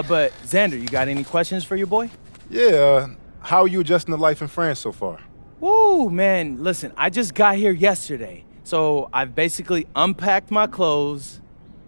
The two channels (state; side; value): inverted; both; correlation -1.00